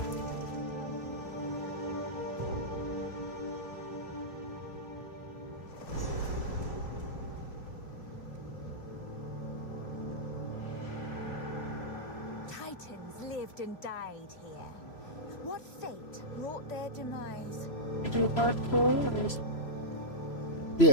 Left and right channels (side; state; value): right; late; 3.0 ms